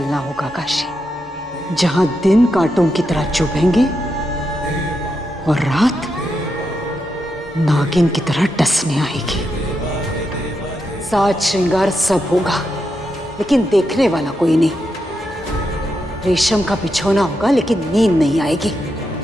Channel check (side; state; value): both; normal; correlation 0.85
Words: होगा काशी। जहां दिन कांटों की तरह चुभेंगे और रात नागिन की तरह डसने आएगी। साज श्रृंगार सब होगा, लेकिन देखने वाला कोई नहीं। रेशम का बिछौना होगा, लेकिन नींद नहीं आएगी।